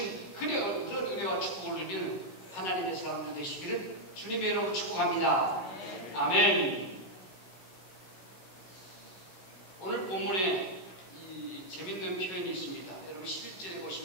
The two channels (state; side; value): late; right; 16 ms